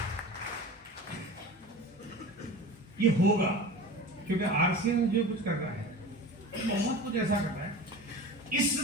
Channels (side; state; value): both; normal; correlation 0.35